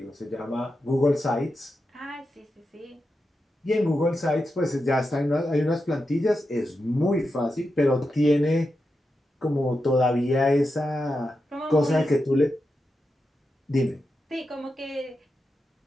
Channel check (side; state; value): both; normal; correlation 0.88